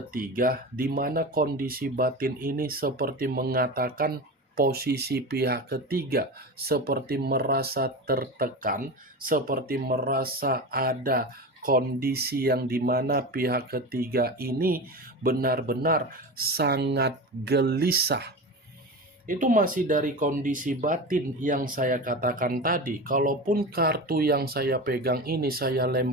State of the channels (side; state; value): both; normal; correlation 0.26